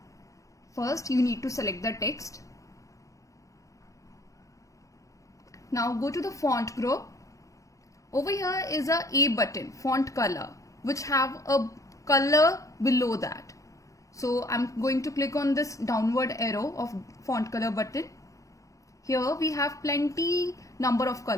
First, you need to select the text. Now go to the font group. Over here is a A button, font color, which have a color below that. So I'm going to click on this downward arrow of font color button. Here we have plenty number of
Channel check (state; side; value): late; right; 0.16 ms